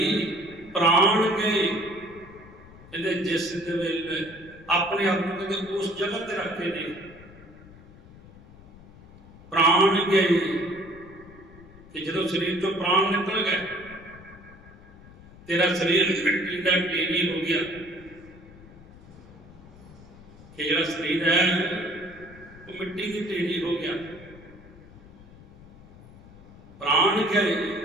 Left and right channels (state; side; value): noise; left; rumble, 21 dB below the sound